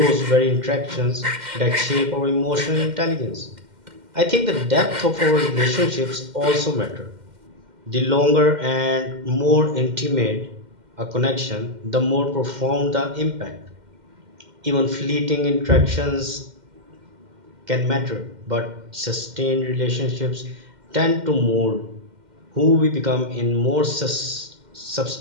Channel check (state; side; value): late; left; 2.1 ms